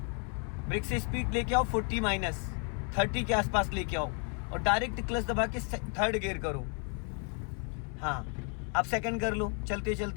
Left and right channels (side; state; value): right; quieter; 39.9 dB